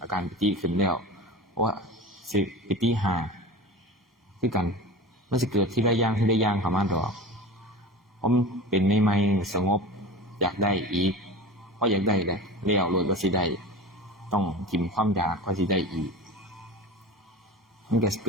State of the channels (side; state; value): both; normal; correlation 0.32